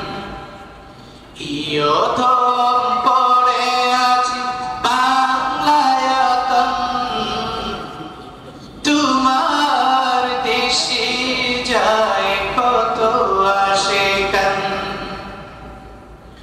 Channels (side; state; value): both; identical; correlation 1.00